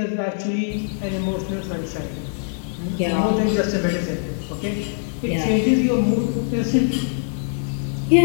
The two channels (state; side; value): silent; right; 57 dB below the other